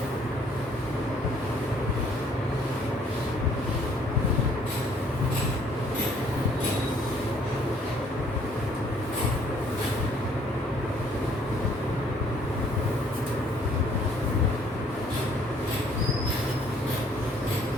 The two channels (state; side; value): normal; both; correlation 0.61